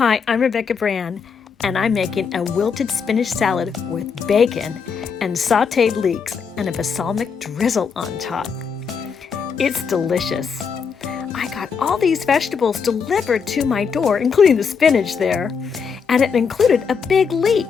I'm Rebecca Brand, and I'm making a wilted spinach salad with bacon and sautéed leeks and a balsamic drizzle on top. It's delicious. I got all these vegetables delivered to my door, including the spinach there, and it included a big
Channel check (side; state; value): right; quieter; 6.0 dB